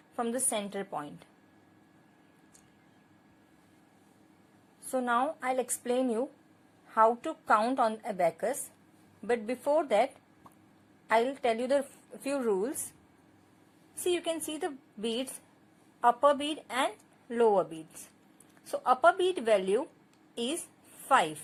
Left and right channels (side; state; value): both; identical; correlation 1.00